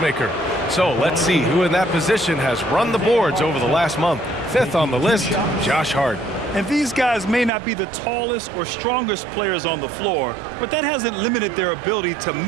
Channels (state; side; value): drops out; left; at 7.5 s